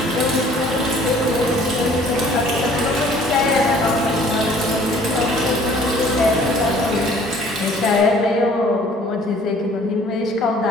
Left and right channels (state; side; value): normal; both; correlation 0.54